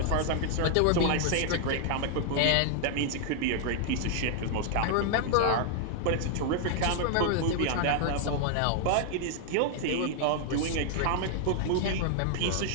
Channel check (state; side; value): different; both; correlation 0.00